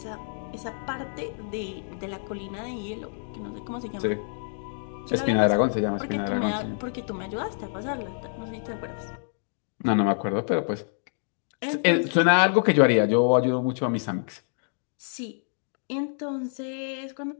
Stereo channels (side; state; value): right; silent; digital silence